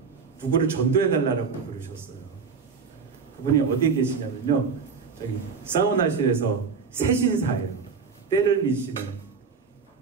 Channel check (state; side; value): quieter; left; 5.5 dB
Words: 누구를 전도해달라고 부르셨어요. 그분이 어디에 계시냐면요. 저기 사우나실에서 새신사예요. 때를 미시는